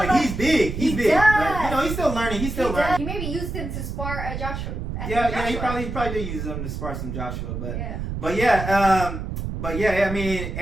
and he's big. He's big, but he's still learning. He's still learning. He maybe used him to spar Joshua. Yeah. He probably did use him to spar some Joshua, but yeah. I mean,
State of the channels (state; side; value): noise; right; rumble, 5 dB below the sound